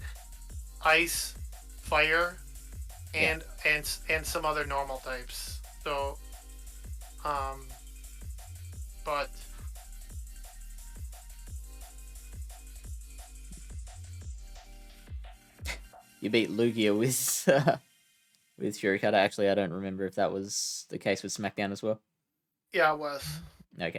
Ice, Fire, and some other normal types. So but you beat Lugia with with Shurikata. Actually, I don't remember if that was the case with SmackDown as well. yeah, it was.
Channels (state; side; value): identical; both; correlation 1.00